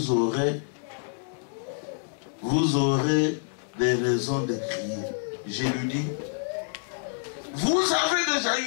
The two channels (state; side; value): silent; right; digital silence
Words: aurez des raisons de crier. Je lui dis, vous avez déjà